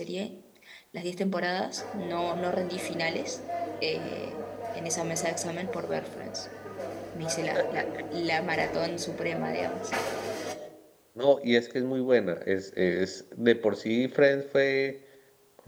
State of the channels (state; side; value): identical; both; correlation 1.00